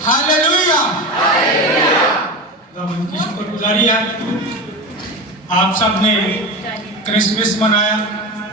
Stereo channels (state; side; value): normal; both; correlation 0.24